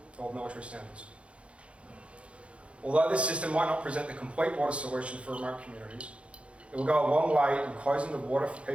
or military standards. Although this system might not present the complete water solution for remote communities, it will go a long way in closing the water for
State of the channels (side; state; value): left; late; 0.060 ms